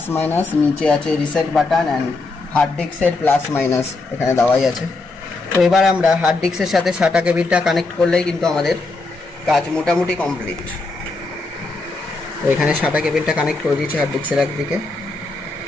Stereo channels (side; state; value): right; quieter; 3.4 dB